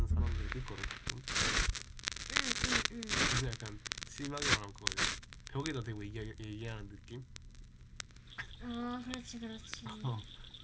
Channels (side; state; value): both; identical; correlation 1.00